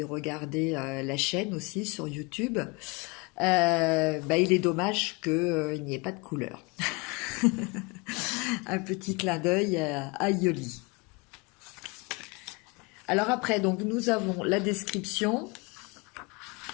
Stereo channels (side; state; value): right; quieter; 27.1 dB